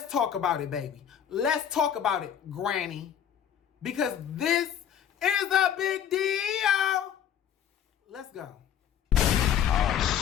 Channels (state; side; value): quieter; right; 9.2 dB